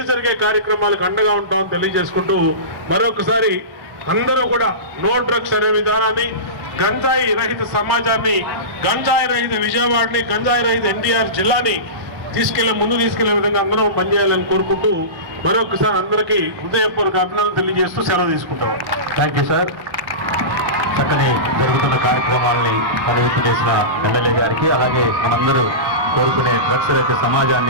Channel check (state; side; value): late; left; 1.1 ms